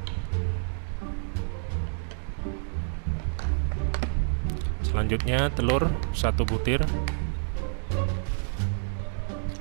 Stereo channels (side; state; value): left; silent; digital silence